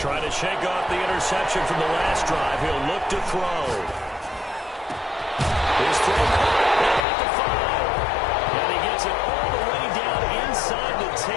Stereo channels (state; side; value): drops out; right; at 7.1 s